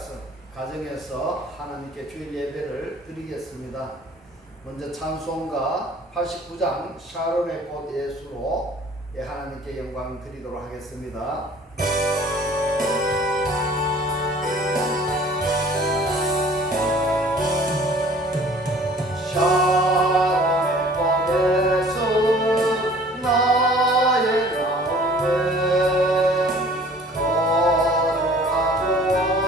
가정에서 하나님께 주일 예배를 드리겠습니다. 먼저 찬송가 89장 샤론의 꽃 예수로 하나님께 영광 드리도록 하겠습니다.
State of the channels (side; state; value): both; normal; correlation 0.50